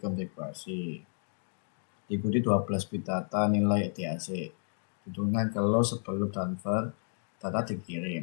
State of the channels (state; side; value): silent; right; 57 dB below the other